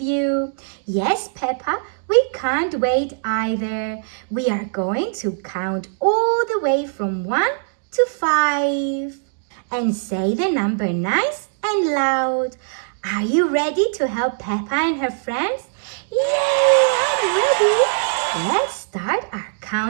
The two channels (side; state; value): left; silent; digital silence